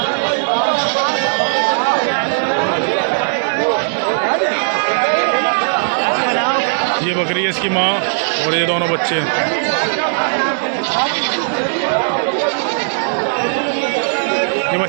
ये बकरी है इसकी माँ और ये दोनों बच्चे हैं। ये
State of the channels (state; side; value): silent; left; 64 dB below the other